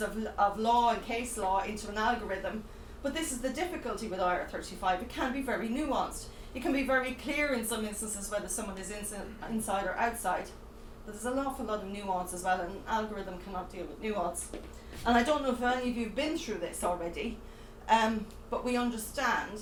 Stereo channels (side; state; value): both; identical; correlation 1.00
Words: of law and case law into an algorithm, but this is the difficulty with IR35. It can be very nuanced. It can be very clear in some instances whether someone is inside or outside, but there's an awful lot of nuance as well, and an algorithm cannot deal with nuance. And I don't know if any of you have been through this already, but we understand